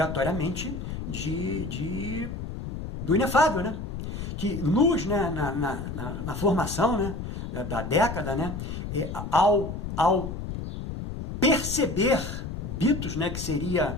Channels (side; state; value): left; noise; rumble, 6 dB below the sound